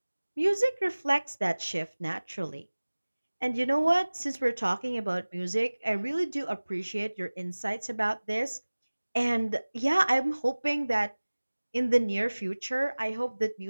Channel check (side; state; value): both; inverted; correlation -1.00